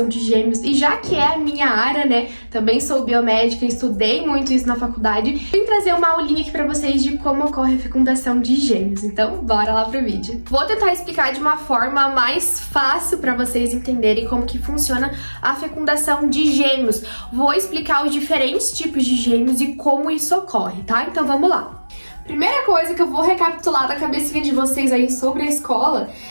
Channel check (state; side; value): inverted; both; correlation -1.00